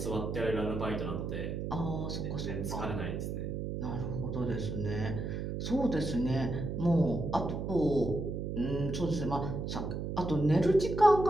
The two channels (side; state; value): right; noise; hum, 3 dB below the sound